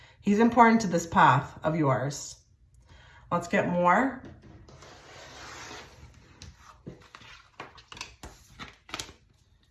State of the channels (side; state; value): both; identical; correlation 1.00